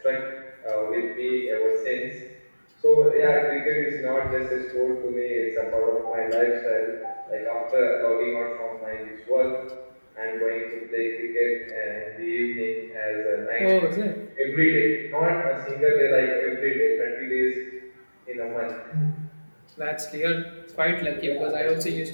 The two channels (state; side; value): inverted; both; correlation -1.00